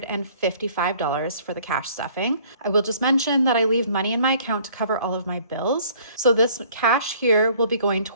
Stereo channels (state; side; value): inverted; both; correlation -0.56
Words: for the cash stuffing. I will just mention that I leave money in my account to cover all of my bills. So this cash here will be going